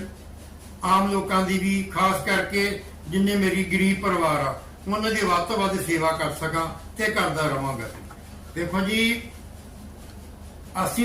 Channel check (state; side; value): identical; both; correlation 1.00